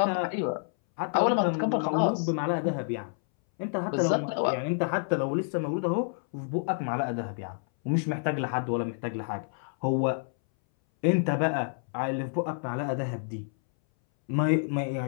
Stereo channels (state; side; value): silent; right; 59 dB below the other